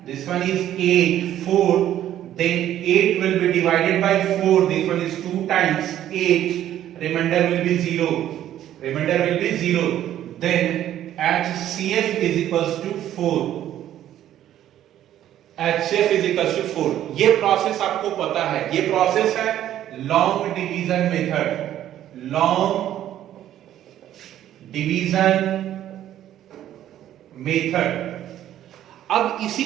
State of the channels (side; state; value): left; quieter; 11.9 dB